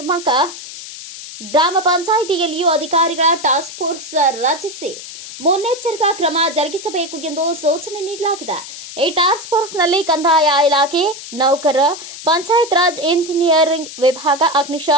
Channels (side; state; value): left; noise; hiss, 12 dB below the sound